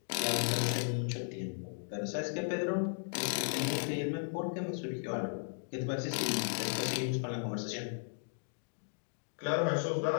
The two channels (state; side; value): silent; right; digital silence